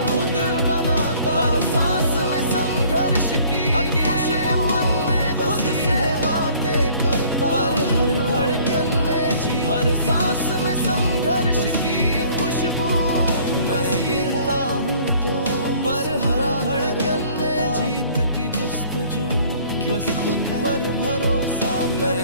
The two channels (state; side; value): inverted; both; correlation -0.55